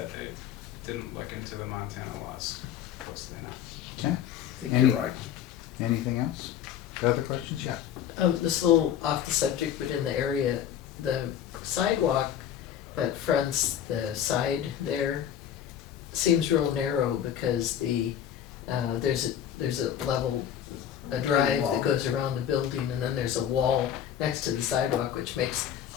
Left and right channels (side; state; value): right; quieter; 9.8 dB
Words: they didn't look into the Montana laws closely enough. Okay, I think you're right. anything else? Other questions? Yeah. This is a little off the subject, but in the area, the sidewalk that fronts the side there seems real narrow because there's a level, a drive that goes around the building, and then there's a wall next to the sidewalk, which makes